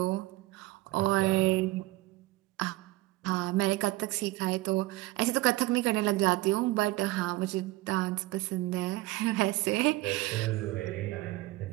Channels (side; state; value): left; quieter; 19.2 dB